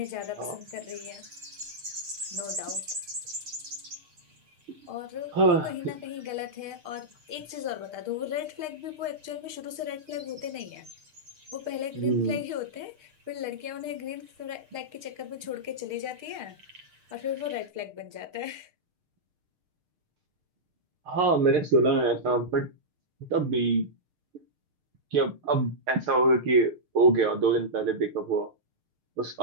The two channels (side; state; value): left; late; 6.6 ms